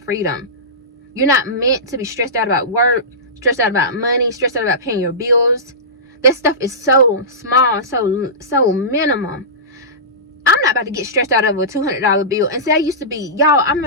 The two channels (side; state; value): both; normal; correlation -0.20